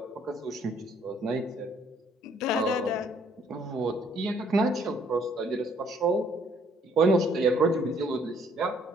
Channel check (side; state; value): both; normal; correlation 0.64